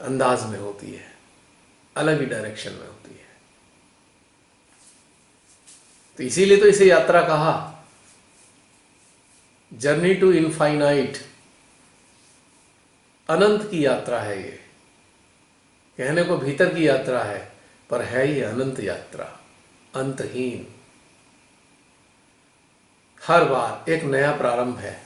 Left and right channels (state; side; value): identical; both; correlation 1.00